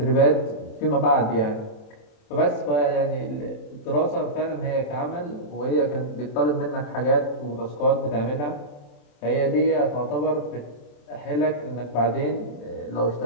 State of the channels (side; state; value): right; late; 27 ms